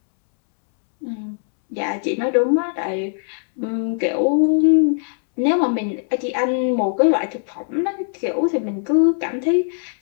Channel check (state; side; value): silent; right; 66 dB below the other